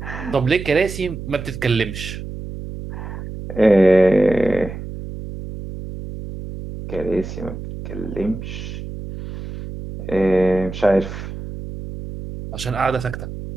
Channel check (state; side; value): noise; right; hum, 9 dB below the sound